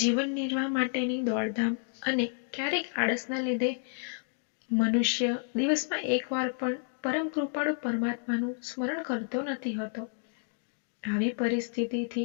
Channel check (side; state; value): right; silent; 57 dB below the other